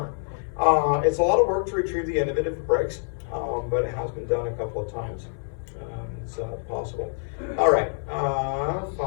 It's a lot of work to retrieve the end of it if it breaks, but it has been done a couple of times. It's possible. All right,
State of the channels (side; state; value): right; silent; 57 dB below the other